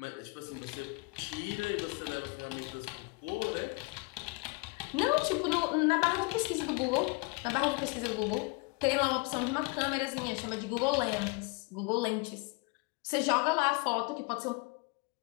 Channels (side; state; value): right; quieter; 28.1 dB